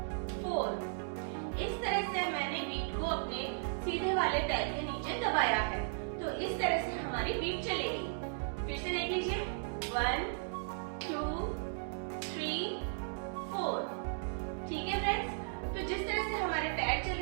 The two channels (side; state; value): left; silent; digital silence